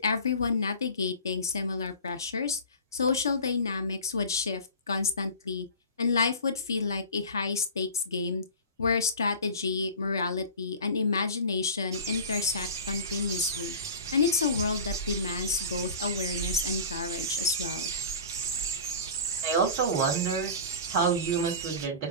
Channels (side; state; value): both; inverted; correlation -0.36